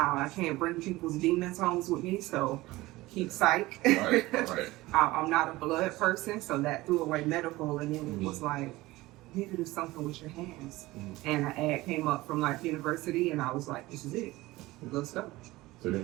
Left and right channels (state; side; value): quieter; left; 19.1 dB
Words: can't bring people's demons home with me, so keep psych. I'm not a blood person, so that threw away medical, and then it was like, you need to do something with your hands. And an ad came up from Life University, and I was like, this is it. Let's go. So they